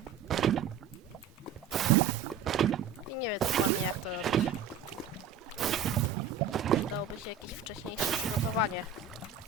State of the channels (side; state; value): left; quieter; 6.9 dB